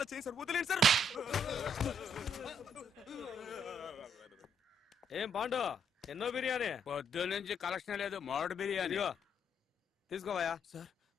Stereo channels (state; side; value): normal; both; correlation 0.72